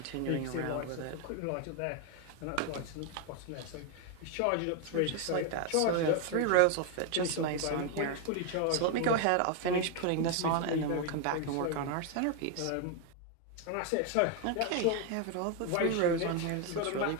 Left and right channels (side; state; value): both; different; correlation 0.01